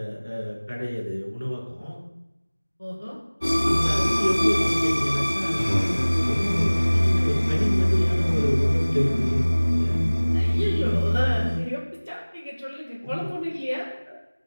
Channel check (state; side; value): inverted; both; correlation -1.00